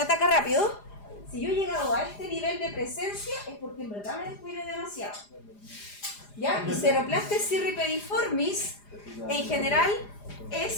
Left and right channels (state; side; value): late; right; 4.9 ms